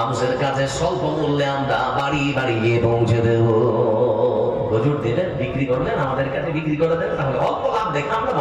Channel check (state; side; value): identical; both; correlation 1.00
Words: কাছে স্বল্প মূল্যে আমরা বাড়ি বাড়ি গিয়ে পৌঁছে দেব। হুজুর দিলেন, বিক্রি করলেন, আমাদের কাছে বিক্রি করে দেন, তাহলে অল্প লাভ দেখে আমরা